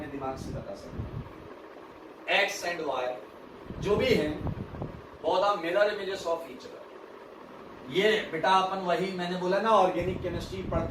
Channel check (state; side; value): identical; both; correlation 1.00